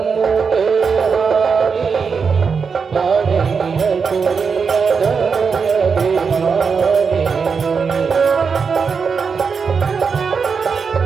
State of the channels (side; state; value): left; quieter; 5.6 dB